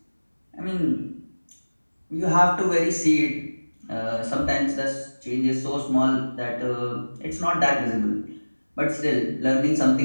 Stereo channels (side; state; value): both; inverted; correlation -1.00